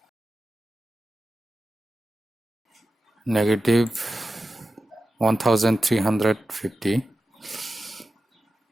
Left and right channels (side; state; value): both; normal; correlation 0.92